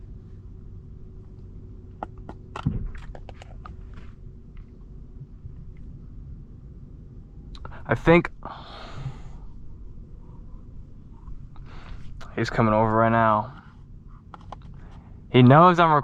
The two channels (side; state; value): both; identical; correlation 1.00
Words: I think he's coming over right now. He knows I'm